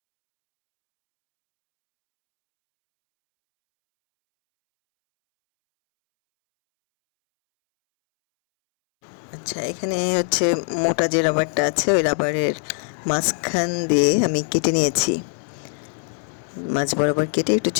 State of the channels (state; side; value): silent; right; 64 dB below the other